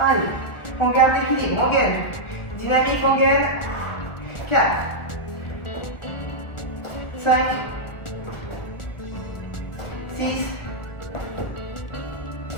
on garde l'équilibre, on gaine. Dynamique, on gaine. 4, 5, 6,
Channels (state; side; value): late; right; 1.4 ms